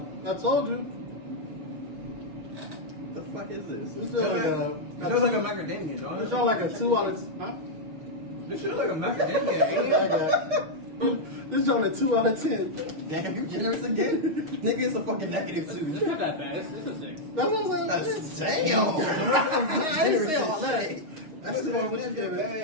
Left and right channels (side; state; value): left; late; 6.5 ms